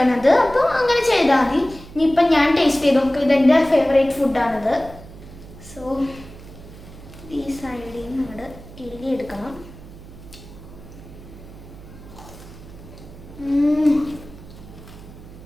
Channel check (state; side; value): noise; right; hum, 17 dB below the sound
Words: അപ്പോൾ അങ്ങനെ ചെയ്താൽ മതി. ഇനിയിപ്പം ഞാൻ ടേസ്റ്റ് ചെയ്ത് നോക്കും. ഇതെൻ്റെ ഫേവറേറ്റ് ഫുഡാണിത്. സോ ഈ സൈഡിൽ നിന്ന് നമ്മൾ എഴുതിയെടുക്കണം.